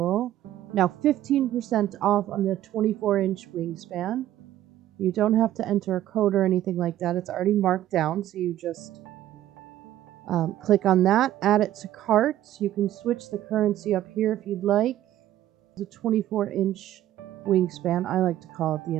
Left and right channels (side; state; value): left; quieter; 13.1 dB